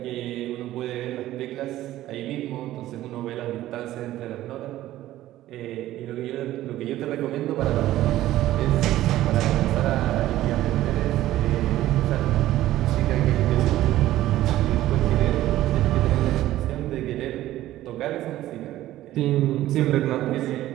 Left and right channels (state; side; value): quieter; left; 14.6 dB